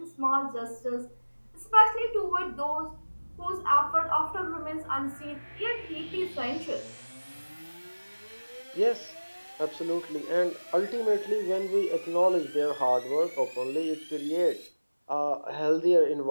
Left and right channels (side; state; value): both; inverted; correlation -1.00